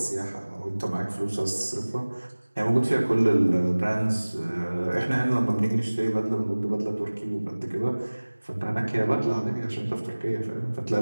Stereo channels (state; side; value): inverted; both; correlation -1.00